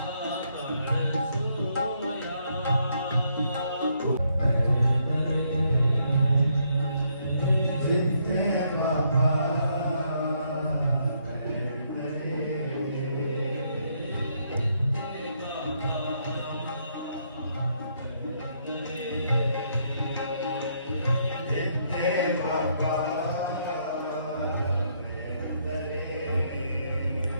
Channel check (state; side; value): inverted; both; correlation -0.73